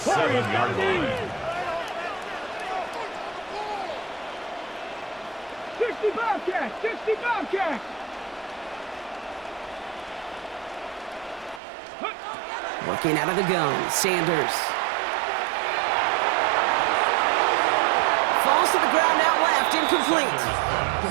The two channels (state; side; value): drops out; left; at 11.6 s